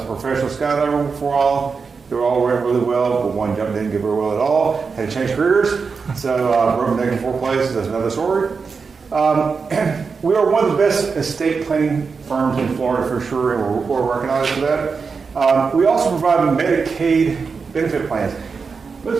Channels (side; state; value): left; quieter; 5.1 dB